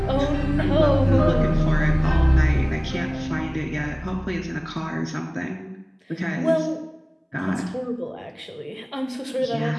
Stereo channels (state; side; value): identical; both; correlation 1.00